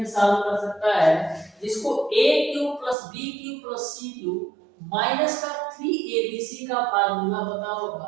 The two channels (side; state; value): left; drops out; at 3.0 s